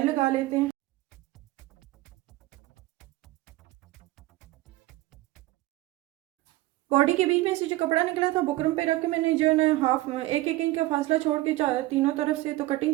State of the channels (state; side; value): quieter; left; 18.3 dB